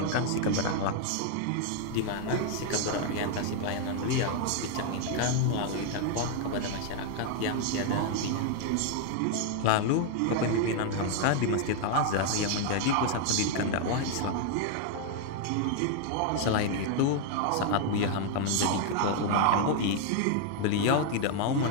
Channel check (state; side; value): different; both; correlation 0.00